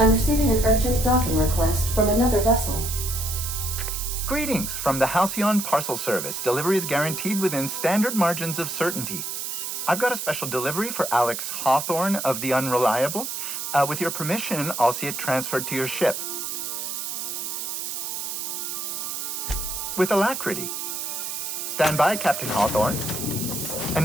receiving an urgent docking request from another vessel. Greetings from the Halcyon Parcel Service. Delivery is guaranteed within standard margins of certainty. I've got a special delivery for Alex Hawthorne of the Unreliable. With your permission, I'll see it transferred to your ship. With alacrity. Stand by, Captain Hawthorne.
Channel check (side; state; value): right; noise; hiss, 4 dB below the sound